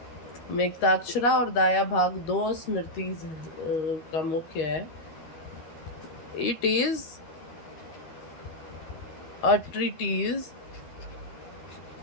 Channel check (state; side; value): late; right; 13 ms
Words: मेघताक्षरा और दाया भाग दो स्मृति का मुख्य है। It is a treatise